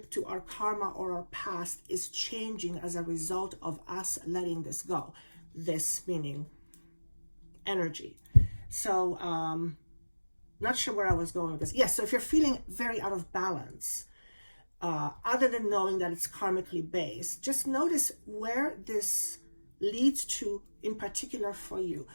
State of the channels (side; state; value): both; inverted; correlation -1.00